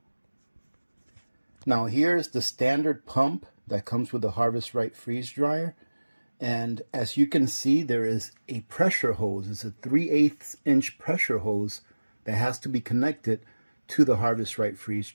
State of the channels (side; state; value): both; inverted; correlation -1.00